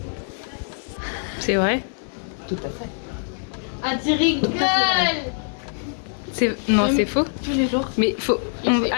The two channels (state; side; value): silent; right; 63 dB below the other